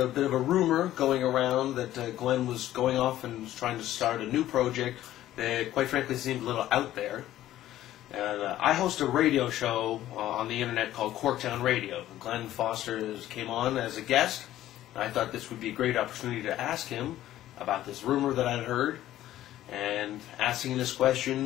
bit of a rumor going around that Glen was going off and was trying to start a new project that quite frankly seemed a little out there. And I host a radio show on the internet called Corktown Radio. Glen Foster came on as a guest. I thought this would be a great opportunity to ask him about this rumor that I'd heard. And asking this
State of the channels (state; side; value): quieter; right; 13.6 dB